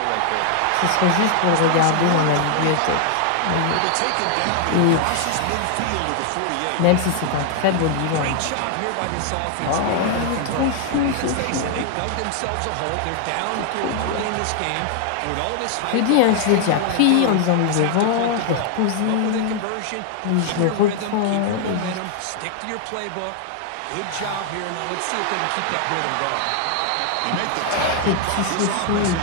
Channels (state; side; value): different; both; correlation 0.00